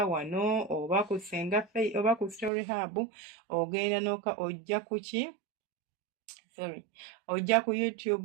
wano oba ku Ssenga Faith oba ku Story Hub, ogenda ojja ku ki? Ojja ku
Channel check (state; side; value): drops out; left; at 2.5 s